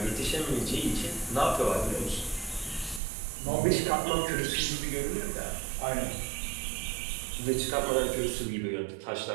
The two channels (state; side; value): drops out; left; at 3.0 s